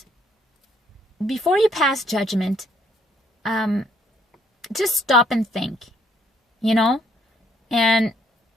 before you pass judgment, just stop and think, and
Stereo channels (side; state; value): both; normal; correlation 0.67